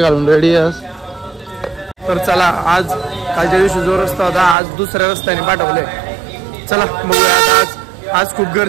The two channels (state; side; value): drops out; left; at 4.5 s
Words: घालून रेडी आहे. तर चला, आज कालच्या दिवशी जो रस्ता होता आज दुसऱ्या रस्त्याने पाठवले. चला बघूया. आज खूप